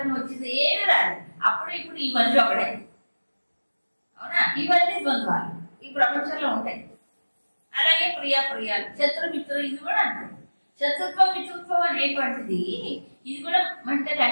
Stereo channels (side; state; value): both; inverted; correlation -1.00